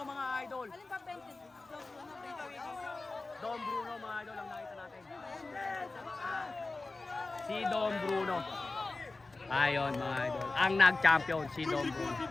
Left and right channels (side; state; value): right; quieter; 3.4 dB